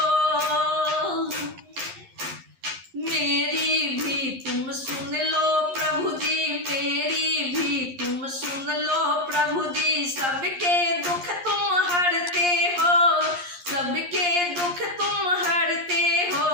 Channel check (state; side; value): late; left; 11 ms